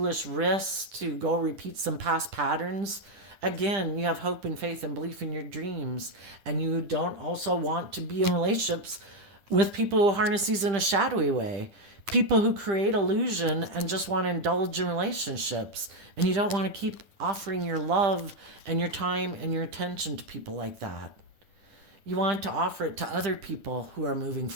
risks to go repeat some past patterns. Again, you have hope and faith and belief in your dreams, and you don't also want to be in relationships with people who harness these in a shadowy way, people who create illusion and just want to indulge in relationships. And you don't want to keep offering your love and your time and your attention to people like that. You want to offer it to other people who are moving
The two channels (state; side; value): late; left; 10 ms